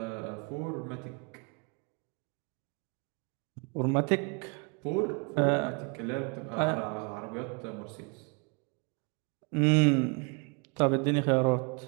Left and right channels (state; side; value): quieter; left; 33.8 dB